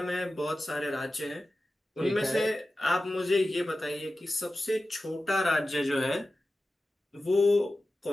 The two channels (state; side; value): normal; both; correlation 0.94